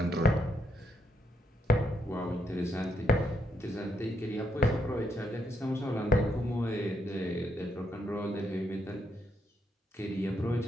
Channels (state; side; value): normal; both; correlation 0.78